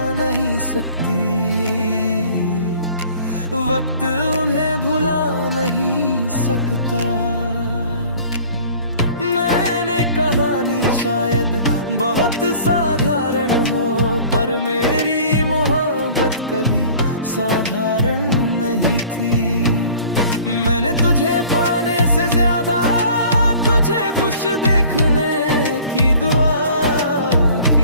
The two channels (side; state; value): both; inverted; correlation -0.49